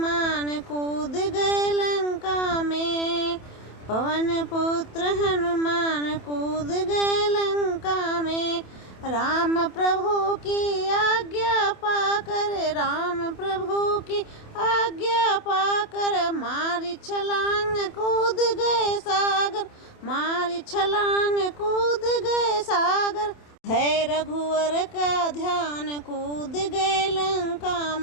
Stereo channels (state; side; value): late; right; 27 ms